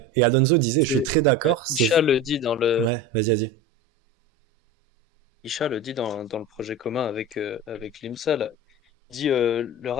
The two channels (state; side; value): normal; both; correlation 0.29